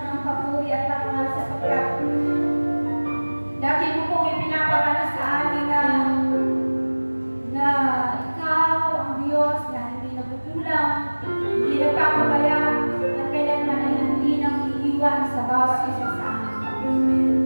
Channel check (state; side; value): inverted; both; correlation -1.00